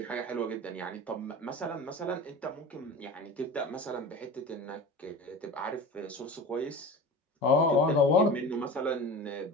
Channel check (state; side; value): normal; both; correlation 0.34